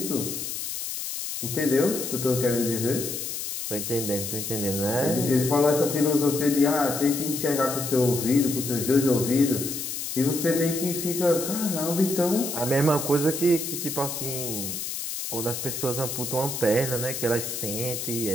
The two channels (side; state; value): left; noise; hiss, 5 dB below the sound